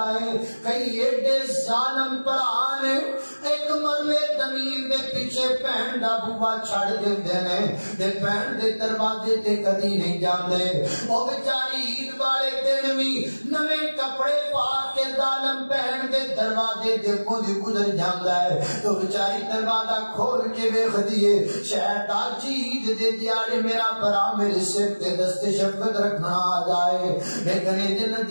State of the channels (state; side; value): inverted; both; correlation -1.00